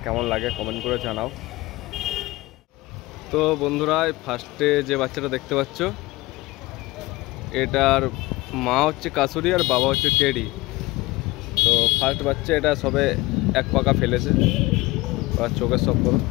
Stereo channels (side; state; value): right; quieter; 20.5 dB